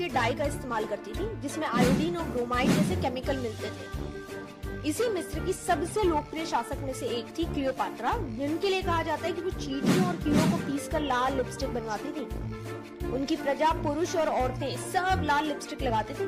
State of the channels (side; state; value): both; identical; correlation 1.00